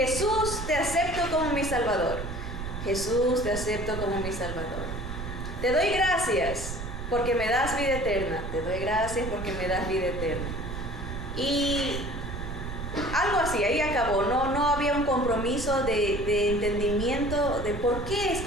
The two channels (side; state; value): right; noise; rumble, 7 dB below the sound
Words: te acepto como mi Salvador. Jesús, te acepto como mi Salvador. Te doy gracias porque me das vida eterna. Te doy gracias porque me das vida eterna. Y algo así, ahí acabó. No había un compromiso de entendimiento de por qué es